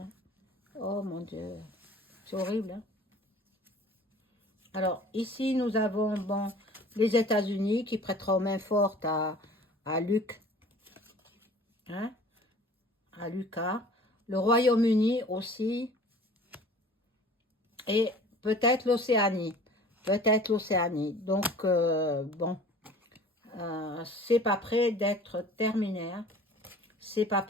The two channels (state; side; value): normal; both; correlation 0.47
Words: Oh mon Dieu, c'est horrible, hein. Alors, ici, nous avons, bon, les États-Unis qui prêteront main forte à Luc, hein, à Lucas. Le Royaume-Uni aussi. Et peut-être l'Océanie. Peut-être l'Océanie. Donc, bon, c'est pas prêt d'être terminé, hein. C'est pas